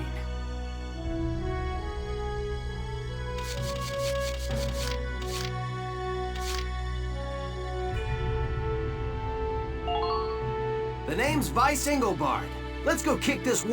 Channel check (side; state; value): both; identical; correlation 1.00